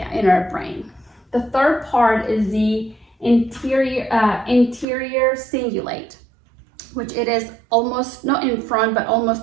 in our brain. The third part is the interior cingulate, which it is almost not in front, but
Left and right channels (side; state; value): left; drops out; at 4.9 s